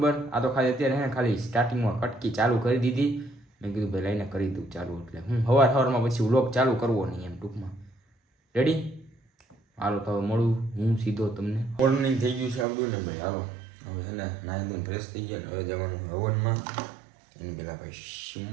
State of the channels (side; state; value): left; drops out; at 12.7 s